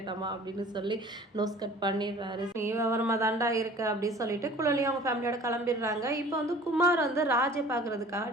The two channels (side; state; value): both; normal; correlation 0.47